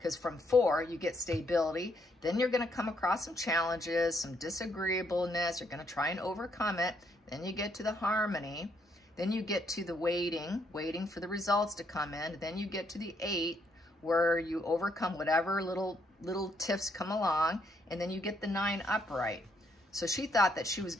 from 4, you get stability. Then you're going to come across some challenges, some disagreeableness. You're going to try and overcome it. Then you get to the harmony. Then you get to the waiting for the results to come in. Then you get to the 8, where you overcome whatever little tiffs come along. And then you get the 9 upright. So she thought that she was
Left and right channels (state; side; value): normal; both; correlation 0.73